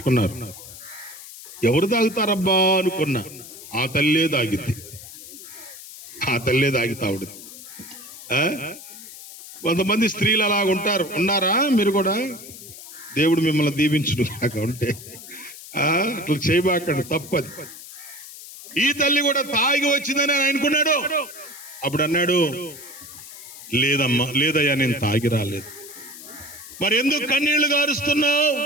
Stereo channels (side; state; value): left; noise; hiss, 15 dB below the sound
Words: ఎవరు తాగుతారబ్బా అనుకున్నా. ఆ తల్లే తాగిద్ది. తాగుడు. కొంతమంది స్త్రీలు అలా ఉన్నారా? మీరు కూడా దేవుడు మిమ్మల్ని దీవించును కాక ఉంటే అట్లా చేయబాకండి, తప్పది. ఈ తల్లి కూడా తాగి వచ్చిందని ఆయన అనుకున్నాడు. అప్పుడు అన్నాడు, లేదయ్యా, నేను తాగి రాలేదు. మరి ఎందుకు కన్నీళ్లు గారుస్తున్నావు?